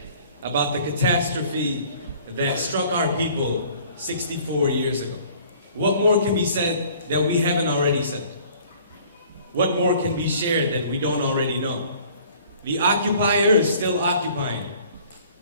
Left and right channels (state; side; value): inverted; both; correlation -0.53